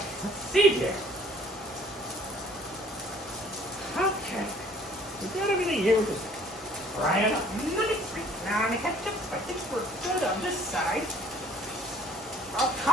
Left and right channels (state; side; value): normal; both; correlation 0.56